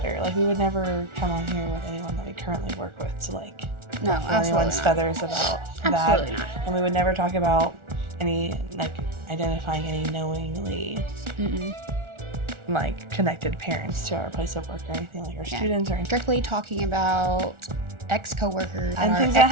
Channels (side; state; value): left; late; 1.4 ms